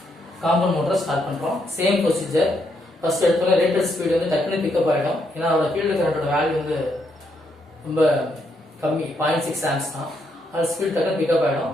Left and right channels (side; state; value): both; normal; correlation 0.77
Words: காம்பவுண்ட் மோட்டரை ஸ்டார்ட் பண்றோம். Same procedure. ஃபர்ஸ்ட் எடுத்தோட ரேட்டட் ஸ்பீடு வந்து டக்குனு பிக்கப் ஆயிடும். ஏன்னா அதோட ஃபீல்டு கரண்டோட வேல்யூ வந்து ரொம்ப கம்மி, 0.6 amps தான். அது ஸ்பீட் டக்குனு பிக்கப் ஆயிடும்.